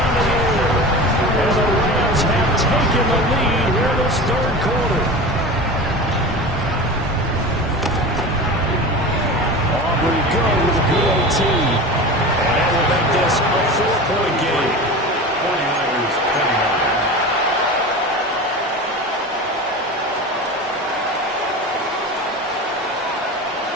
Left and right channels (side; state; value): both; normal; correlation 0.31